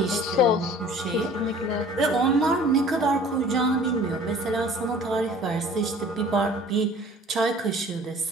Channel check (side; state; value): both; normal; correlation 0.49